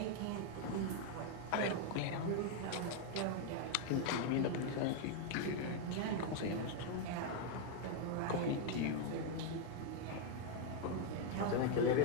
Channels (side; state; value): both; different; correlation 0.00